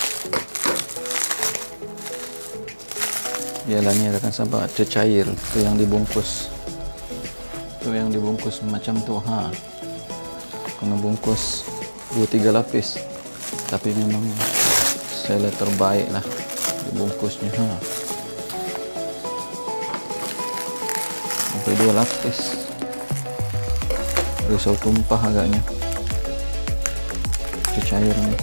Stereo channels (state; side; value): inverted; both; correlation -1.00